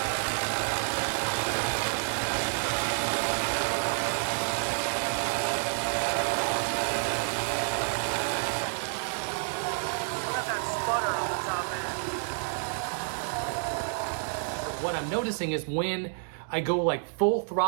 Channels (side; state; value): left; silent; digital silence